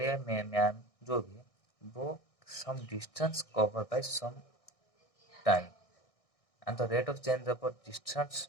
या मैन जो भी है वो some distance covered by some time, and the rate of change of distance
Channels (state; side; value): late; right; 1.6 ms